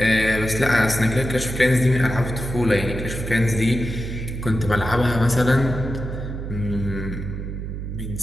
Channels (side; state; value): right; noise; hum, 6 dB below the sound